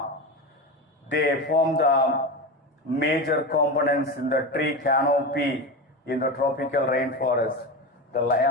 They form the major components in the tree canopy in the tropical rainforest. The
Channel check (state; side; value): normal; both; correlation 0.21